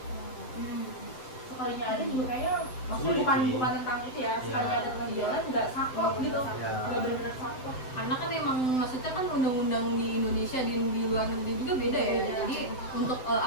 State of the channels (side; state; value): right; late; 7.8 ms